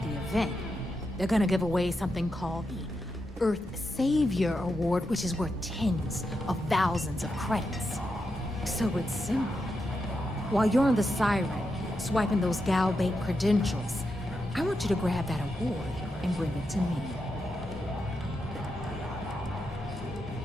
the event, they're gonna give away something called the Earth Savior Award, which is worth tens of thousands of credits. So it's simple. While you're on the Siren, swiping those Gal Bank credentials, I want you to grab that award and bring it to me.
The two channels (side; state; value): both; normal; correlation 0.86